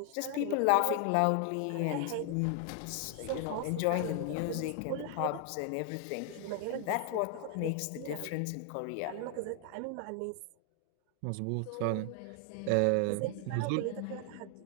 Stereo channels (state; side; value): different; both; correlation 0.00